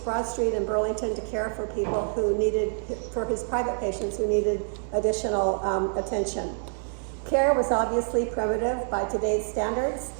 Broad Street in Burlington to care for people who needed, for his private patients who needed additional attention. Care was obviously primitive by today's standards.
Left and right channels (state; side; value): silent; left; digital silence